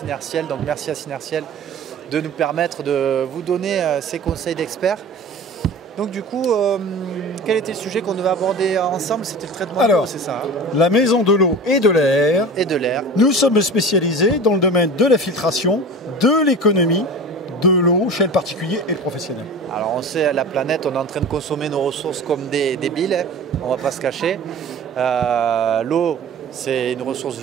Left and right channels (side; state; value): both; normal; correlation 0.35